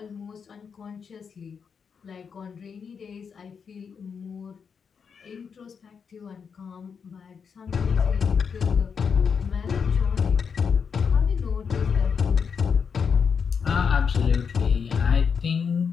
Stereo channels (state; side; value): quieter; right; 6.3 dB